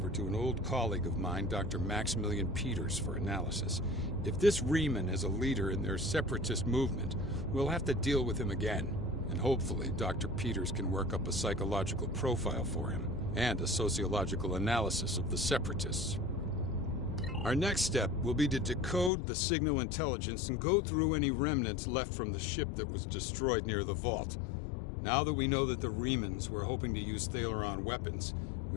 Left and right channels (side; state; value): right; drops out; at 19.1 s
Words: to an old colleague of mine, Dr. Maximilian Peters, for analysis. If this Reman is a leader in their separatist movement, we'll have to deal with him again. And hopefully, Dr. Peters can work up a psychological profile for him, and a sociological analysis of the Separatists. Our next step will be to decode the signal intelligence and go through any remnants left from the ship that was destroyed near the Vault. Now that we know that the Remans were hoping to use Thaleron weapons,